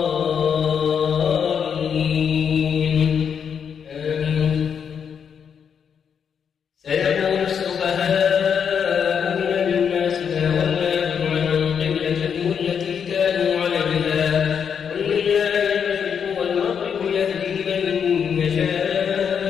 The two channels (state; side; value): quieter; right; 7.3 dB